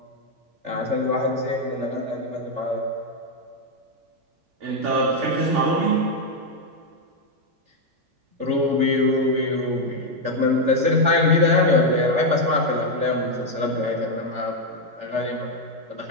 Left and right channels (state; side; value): late; left; 3.4 ms